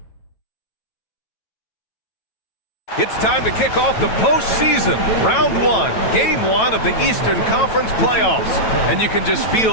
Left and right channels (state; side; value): late; right; 9.1 ms